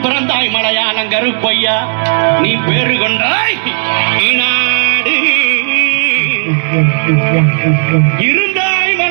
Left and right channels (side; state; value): left; silent; 69 dB below the other